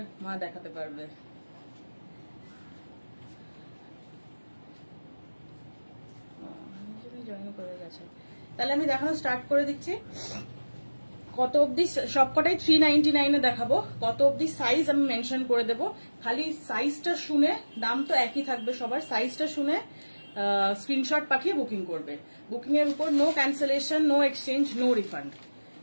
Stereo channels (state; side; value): inverted; both; correlation -1.00